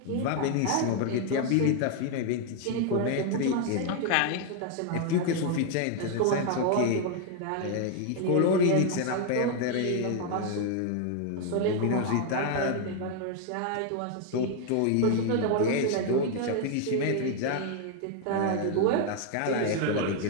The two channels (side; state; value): both; different; correlation 0.00